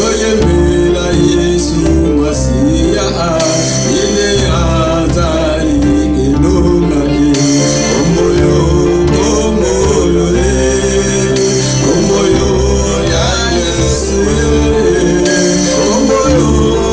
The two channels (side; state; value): both; identical; correlation 1.00